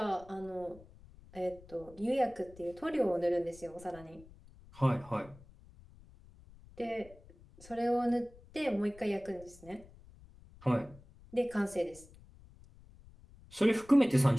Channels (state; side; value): noise; left; rumble, 22 dB below the sound